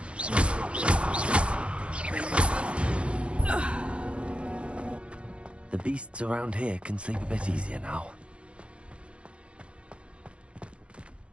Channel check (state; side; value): late; left; 0.059 ms